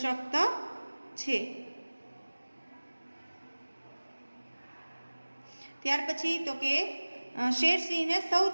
છે. ત્યાર પછી તો કે શેરસિંહને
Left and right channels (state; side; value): inverted; both; correlation -1.00